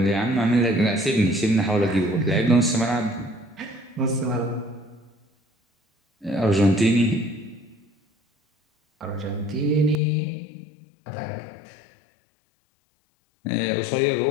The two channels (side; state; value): right; drops out; at 10.0 s